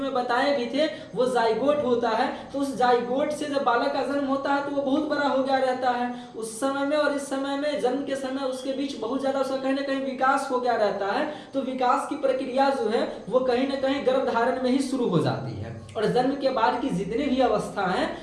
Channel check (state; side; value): identical; both; correlation 1.00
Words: बताए भी थे, वो जाइगोट होता है। तो उस जाइगोट से जब बालक का जन्म होता है तो वो बहुत बड़ा हो गया रहता है। उस समय में और इस समय में, जन्म के समय उसके बीच बहुत ज्यादा उसका कहीं ना कहीं विकास हो गया रहता है। तो विकास की प्रक्रिया जो है वो कहीं ना कहीं गर्भधारण में ही शुरू हो जाती है। और जन्म के बाद की जितनी भी अवस्था है,